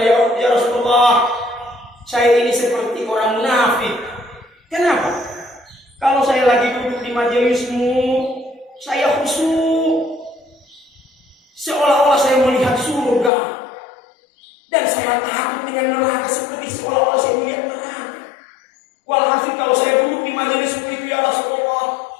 ya Rasulullah, saya ini seperti orang munafik. Kenapa? Kalau saya lagi duduk di majelismu, saya khusyuk, seolah-olah saya melihat surga, dan saya takut dengan neraka seperti seolah-olah saya melihat neraka. Walhasil kalau saya duduk di majelismu itu ya Rasulullah,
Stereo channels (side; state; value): right; drops out; at 13.3 s